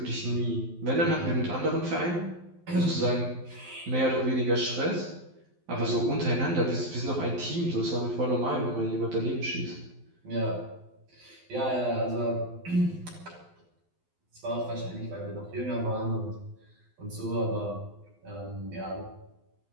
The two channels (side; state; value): left; late; 12 ms